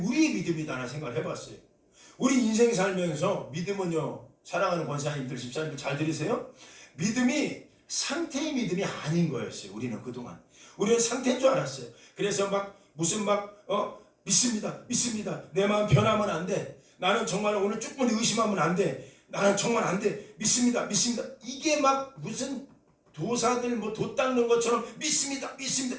믿음이다라는 생각을 해봤어요. 우리 인생 살면서 믿음은요, 사랑하는 권사님들, 집사님들 잘 들으세요? 믿음이 상태의 믿음이 아닌 거였어요. 우리는 그동안 우리는 상태인 줄 알았어요. 그래서 믿습니다 내 마음 변하면 안 돼, 나는 정말 오늘 조금 의심하면 안 돼, 나는 정말 안 돼, 믿습니다 이게 막 무슨 도사들 도 닦는 것처럼 믿습니다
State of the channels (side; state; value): both; identical; correlation 1.00